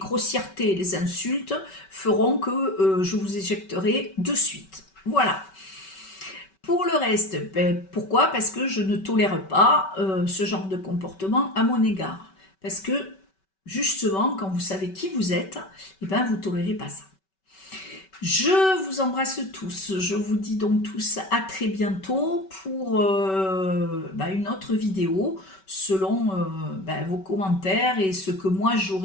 les insultes feront que je vous éjecterai de suite. Voilà. Pour le reste, pourquoi? Parce que je ne tolère pas ce genre de comportement à mon égard. Parce que justement, quand vous savez qui vous êtes, eh ben, vous ne tolérez pas ça. Je vous embrasse tous. Je vous dis donc tous à très bientôt pour une autre vidéo selon vos commentaires et ce que moi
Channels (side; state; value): right; late; 5.3 ms